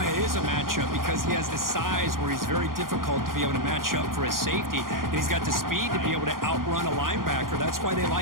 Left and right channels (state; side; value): late; left; 0.91 ms